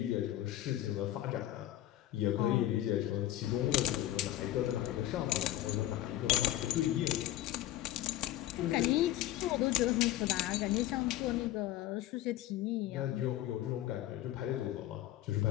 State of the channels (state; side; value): quieter; right; 14.1 dB